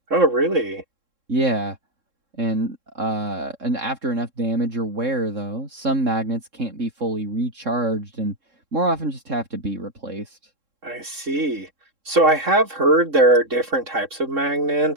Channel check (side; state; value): left; late; 3.7 ms